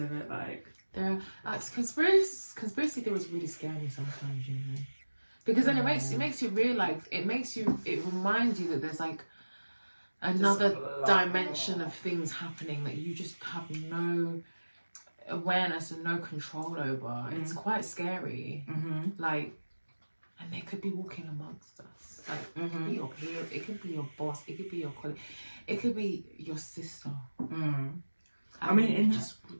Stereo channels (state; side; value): inverted; both; correlation -1.00